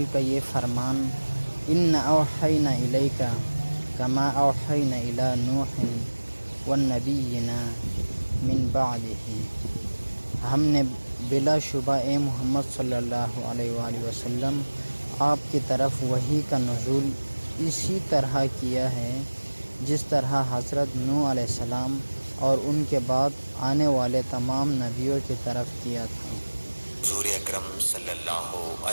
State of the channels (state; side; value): inverted; both; correlation -1.00